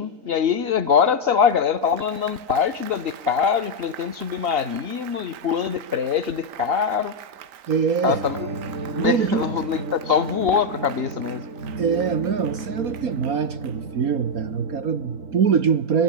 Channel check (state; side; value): late; left; 3.9 ms